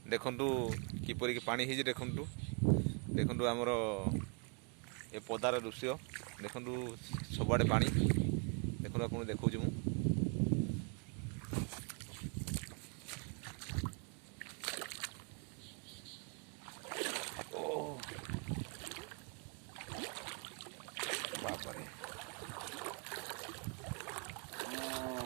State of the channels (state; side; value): quieter; left; 35.9 dB